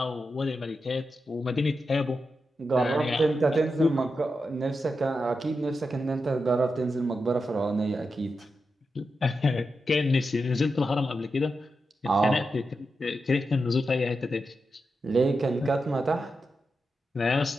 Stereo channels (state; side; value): normal; both; correlation 0.88